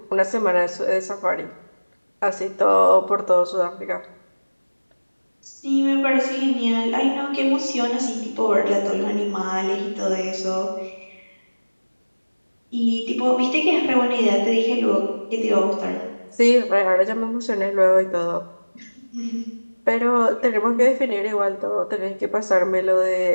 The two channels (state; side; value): inverted; both; correlation -1.00